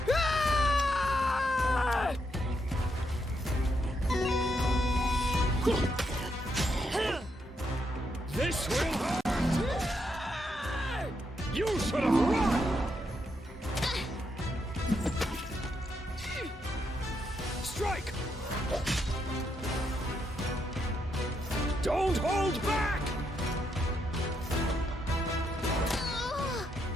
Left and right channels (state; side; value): normal; both; correlation 0.79